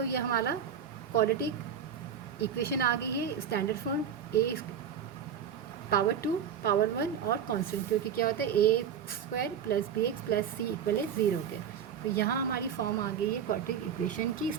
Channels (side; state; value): left; quieter; 7.9 dB